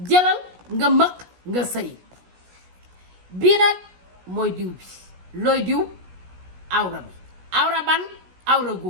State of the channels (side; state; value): left; late; 16 ms